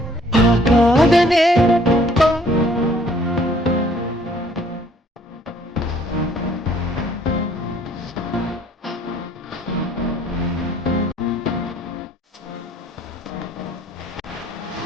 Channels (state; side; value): normal; both; correlation 0.60